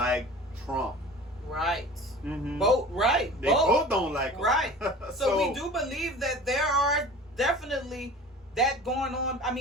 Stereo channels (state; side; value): normal; both; correlation 0.40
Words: Trump. Both both don't like him. So we do believe that there are definitely that going on. I